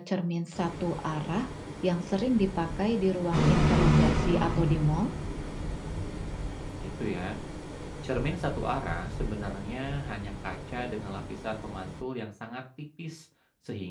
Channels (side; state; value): both; identical; correlation 1.00